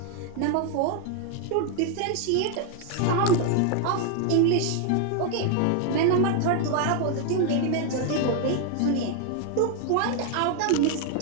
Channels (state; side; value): different; both; correlation 0.00